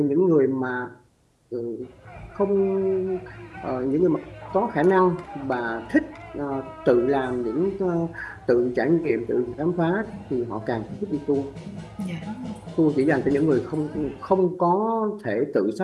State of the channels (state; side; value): identical; both; correlation 1.00